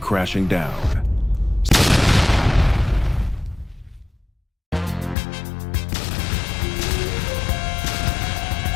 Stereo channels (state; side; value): drops out; right; at 5.2 s